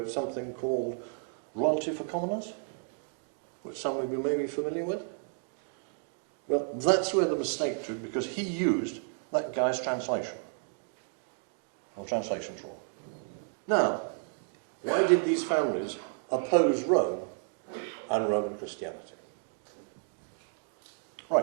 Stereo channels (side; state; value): left; silent; 56 dB below the other